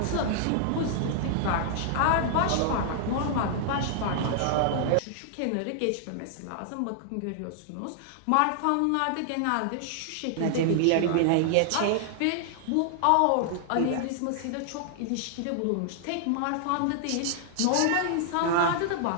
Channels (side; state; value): both; different; correlation 0.00